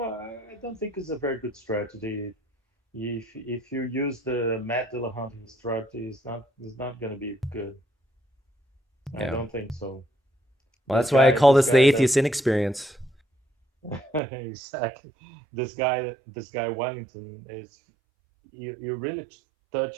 I don't think it's a very good strategy. If you use the Matt Dillahunty strategy, it's not going to be good. I Yeah. don't think so. Well, This that's why I guy, call this this the guy that atheist inexperience. exactly, this guy Wellington is you really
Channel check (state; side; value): drops out; left; at 14.2 s